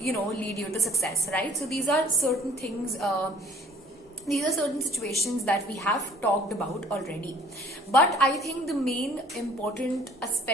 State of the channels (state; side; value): normal; both; correlation 0.52